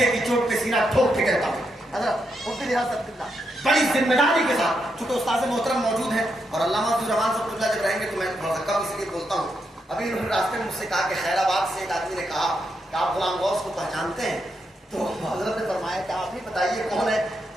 کی چوٹ پہ سینہ ٹھوک کے کہتا ہوں حضرت مفتی حضرت اللہ بڑی ذمہ داری کے ساتھ، چونکہ استاد محترم موجود ہیں اور علامہ عبد الرحمان صاحب اللہ جب رہیں گے تو میں تھوڑا سا کم اس لیے بولتا ہوں. ابھی انہوں نے راستے میں مجھ سے کہا کہ خیر آباد سے ایک آدمی نے کہا کہ آپ غلام غوث کو پہچانتے ہیں؟ تو حضرت نے فرمایا کہ آپ ہی بتائیے کون ہے.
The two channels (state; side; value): normal; both; correlation 0.82